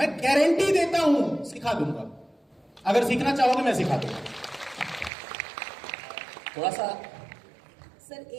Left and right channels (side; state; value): left; drops out; at 5.1 s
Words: गारंटी देता हूं, सिखा दूंगा। अगर सीखना चाहोगे मैं सिखा दूंगा। थोड़ा सा सर